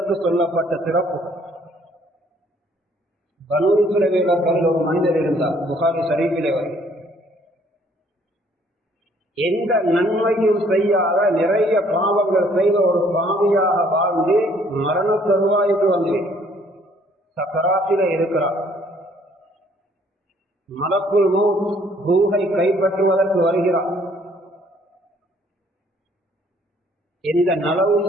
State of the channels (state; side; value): normal; both; correlation 0.62